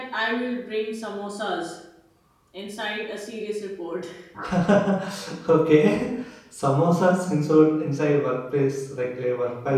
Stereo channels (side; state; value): both; identical; correlation 1.00